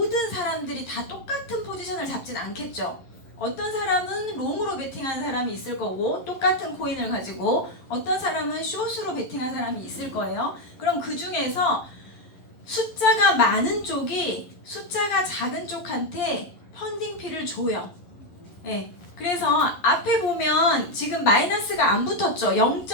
사람들이 다 똑같은 포지션을 잡진 않겠죠. 어떤 사람은 롱으로 베팅한 사람이 있을 거고 똑같은 코인을 가지고 어떤 사람은 숏으로 베팅한 사람이 있을 거예요. 그럼 그 중에서 숫자가 많은 쪽이 숫자가 작은 쪽한테 펀딩피를 줘요. 네. 그래서 앞에 보면 지금 마이너스가 안 붙었죠.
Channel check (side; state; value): right; late; 11 ms